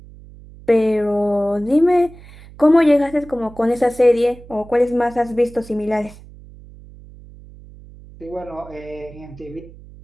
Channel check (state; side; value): noise; right; hum, 20 dB below the sound